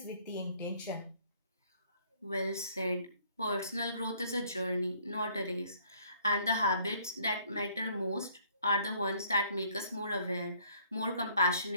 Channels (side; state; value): both; inverted; correlation -0.62